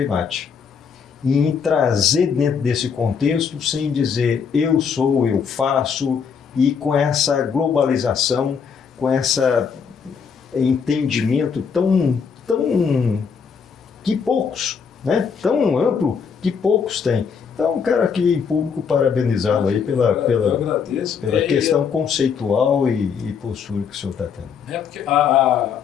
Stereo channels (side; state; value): right; quieter; 6.4 dB